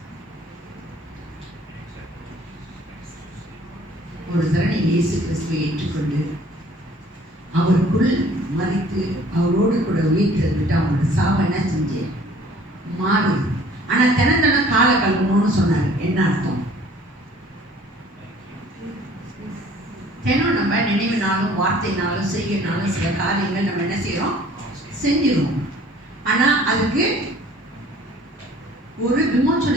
ஒரு தடவை இயேசு கிறிஸ்துவை ஏற்றுக்கொண்டு அவருக்குள் மறித்து அவரோடு கூட உயிர்த்தெழுந்துட்டு அவங்களோட சாபம் என்ன செஞ்சு மாறுது. ஆனா தினம் காலை கழுவணும்னு சொன்னாரு. என்ன அர்த்தம்? தினம் நம்ம நினைவினாலும் வார்த்தைனாலும் செய்யனாலும் சில காரியங்கள் நம்ம என்ன செய்யறோம்? செஞ்சிருவோம். ஆனா அதுக்கு ஒரு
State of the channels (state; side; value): normal; both; correlation 0.53